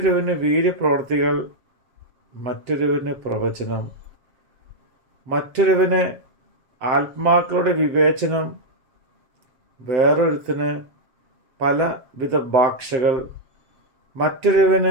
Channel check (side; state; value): left; late; 7.5 ms